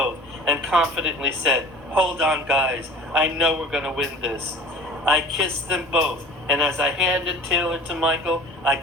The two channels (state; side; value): normal; both; correlation 0.43